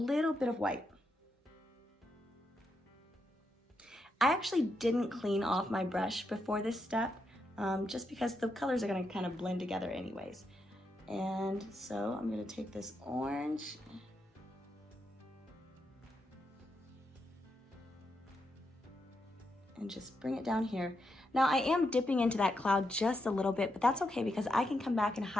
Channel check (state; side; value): normal; both; correlation 0.82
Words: bit of white. I actually didn't clean off my brush before this step, just because the colors are going to kind of blend together anyways. And so I'm going to take this orange and just bring it down here. Now I am dipping into that cloud just a little bit, but that's okay because I can come back and